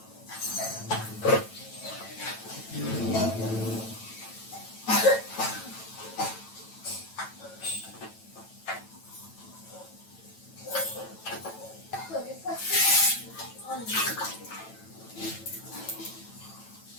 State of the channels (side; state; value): right; late; 9.1 ms